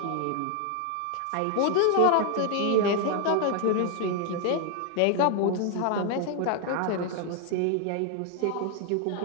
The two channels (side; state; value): both; different; correlation 0.00